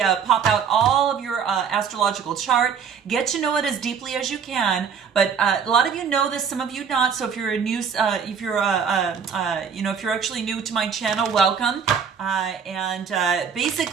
out all of your astrological chart. Get to know it as deeply as you can. But a lot of you know this, some of you not. So if you're a new, if you're actually new to my channel, welcome.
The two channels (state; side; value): quieter; left; 6.7 dB